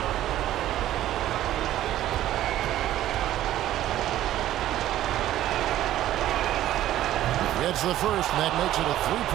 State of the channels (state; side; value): quieter; left; 13.3 dB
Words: Gets the first, and that makes it a